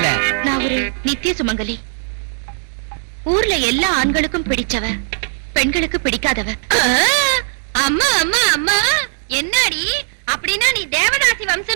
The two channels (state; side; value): silent; left; digital silence